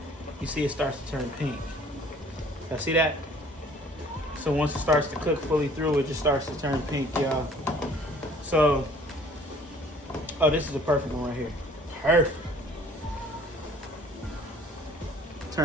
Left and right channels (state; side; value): normal; both; correlation 0.54